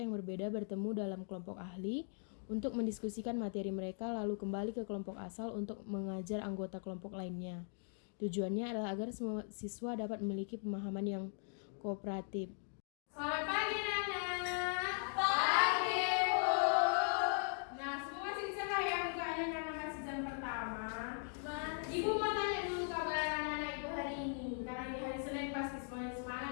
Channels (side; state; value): right; silent; 51 dB below the other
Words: berbeda bertemu dalam kelompok ahli untuk mendiskusikan materi mereka lalu kembali ke kelompok asal untuk mengajar anggota kelompok lainnya. Tujuannya adalah agar semua siswa dapat memiliki pemahaman yang kooperatif. Selamat pagi anak-anak. Pagi Bu. Nah, semua masih cerah ya mukanya karena masih jam pertama. Ibu mau tanya dulu kabar anak-anak Ibu hari ini. Karena ini hari Senin pasti semuanya